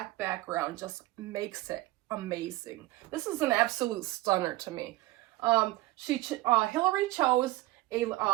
background just makes it amazing. This is an absolute stunner to me. Hillary chose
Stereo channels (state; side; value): quieter; left; 18.6 dB